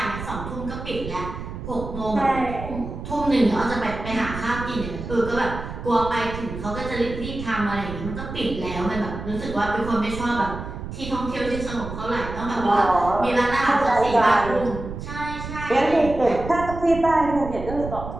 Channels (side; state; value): right; noise; rumble, 9 dB below the sound